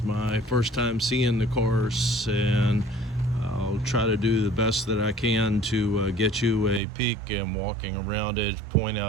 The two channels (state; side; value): drops out; left; at 6.8 s